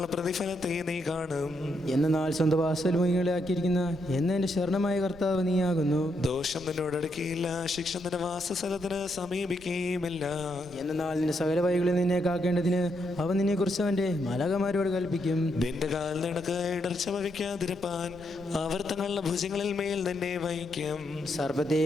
പ്രതിഫലത്തെ നീ കാണും. എന്നാൽ സ്വന്തം വാസൽമുഖികളെ ആക്കിയിരിക്കുന്ന എന്നെ ശരണമായ കർത്താവ് നീയാകുന്നു. ദോഷം നിന്നോടടുക്കിയില്ല. ശിക്ഷ നിന്റെ വാസസ്ഥലത്തിന് സമീപിക്കുകയുമില്ല. എന്നാൽ നിന്റെ സകല വഴികളിൽ നിന്നെ കാക്കേണ്ടതിന് അവൻ നിന്നെ കുറിച്ച് അവന്റെ മാലാഖമാരോട് കൽപ്പിക്കും. നിന്റെ കാൽ നിനക്ക് ഇടർച്ച വഹിക്കാതിരുപ്പാൻ അവർ തങ്ങളുടെ ഭുജങ്ങളിൽ മേൽ നിന്നെ വഹിക്കും.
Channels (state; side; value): noise; right; rumble, 20 dB below the sound